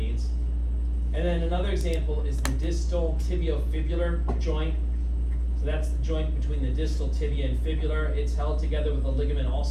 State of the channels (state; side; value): identical; both; correlation 1.00